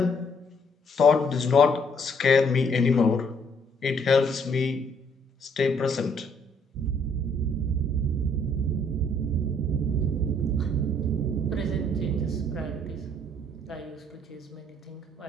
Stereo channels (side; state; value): both; normal; correlation 0.65